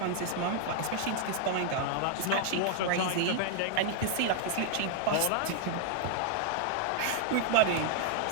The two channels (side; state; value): both; different; correlation 0.00